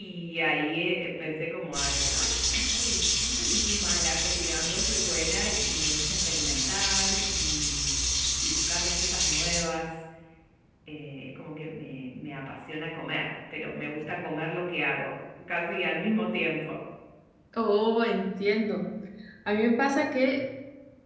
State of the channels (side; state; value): both; identical; correlation 1.00